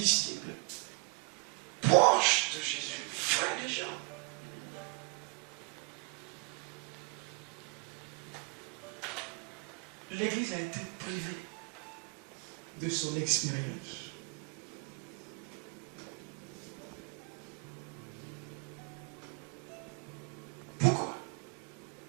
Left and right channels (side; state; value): left; quieter; 31.7 dB